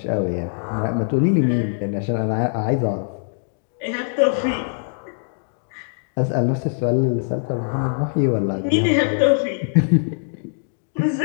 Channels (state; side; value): silent; right; digital silence